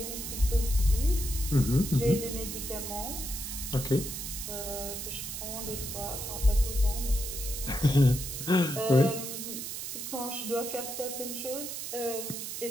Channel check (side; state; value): right; noise; hiss, 6 dB below the sound